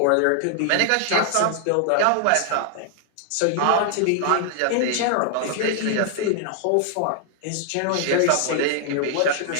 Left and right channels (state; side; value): different; both; correlation 0.00